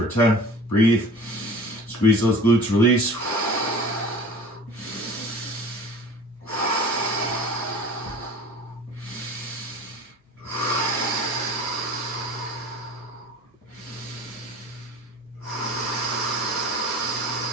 10. Breathe. Squeeze those glutes, release.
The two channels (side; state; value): both; normal; correlation 0.42